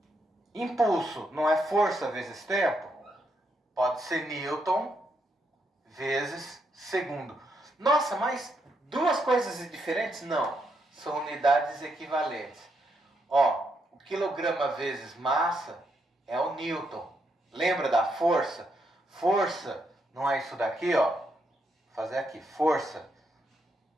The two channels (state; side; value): normal; both; correlation 0.79